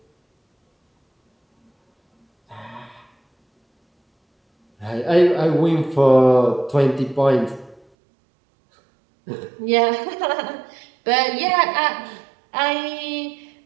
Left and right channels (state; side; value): drops out; left; at 7.9 s